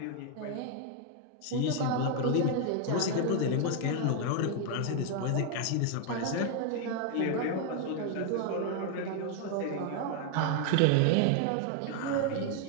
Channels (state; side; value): different; both; correlation 0.00